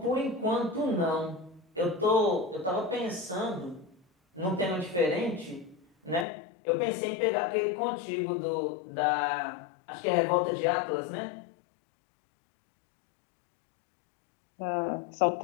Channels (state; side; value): drops out; right; at 6.2 s